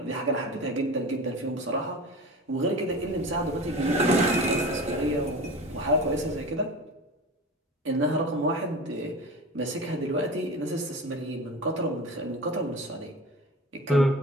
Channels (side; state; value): both; normal; correlation 0.32